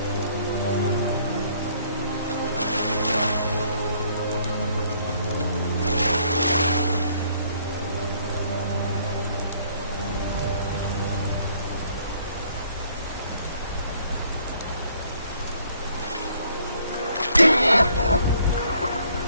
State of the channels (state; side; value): inverted; both; correlation -0.63